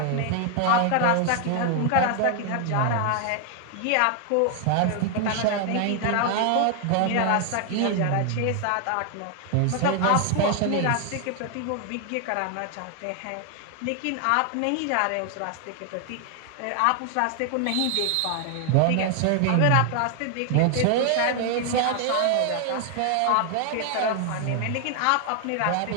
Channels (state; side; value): different; both; correlation 0.00